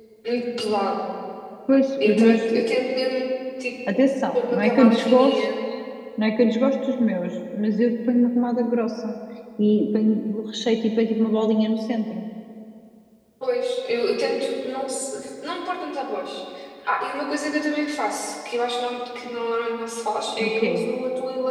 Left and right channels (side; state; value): both; identical; correlation 1.00